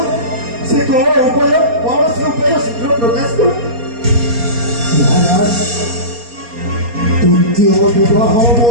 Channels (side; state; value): left; late; 4.2 ms